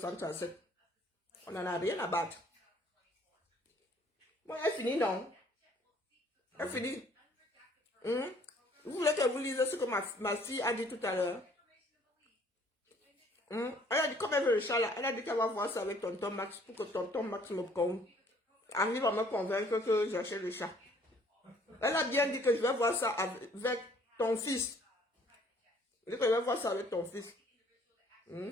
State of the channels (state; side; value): normal; both; correlation 0.59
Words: On n'en a rien à battre. Bon, elle finit, non? Elle finit. Vous voulez que vous lisez ce que ma fille a dit tout à l'heure? Elle a dit, comme elle veut le chat là, elle a dit qu'elle va voir ça avec tonton Max pour que tonton Max arrive à me convaincre que j'achète le chat. Elle a bien dit que je vais voir ça avec ton fils. Elle dit que je vais voir ça avec ton fils.